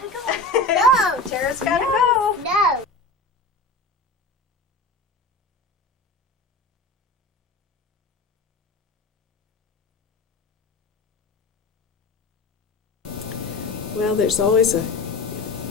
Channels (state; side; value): quieter; right; 3.2 dB